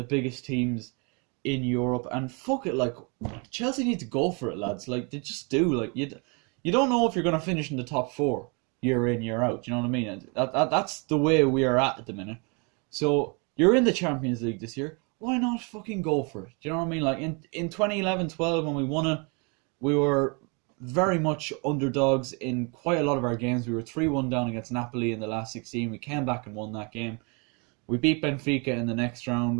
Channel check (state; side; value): quieter; left; 33.0 dB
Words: biggest teams in Europe, and fuck it, like, Chelsea need to go for it, lads. Like, they just do. Like, you don't know if you're going to finish in the top 4 year in, year out. You know what I mean? And that's the way we are at the minute. So you're in the Champions League this year. Why not fucking go for it? Do you know what I mean? Like in 2011-12 when we won it, we were very much underdogs in quite a lot of our games. We were 3-1 down against Napoli in the last 16. We came back and won that game. We beat Benfica in the next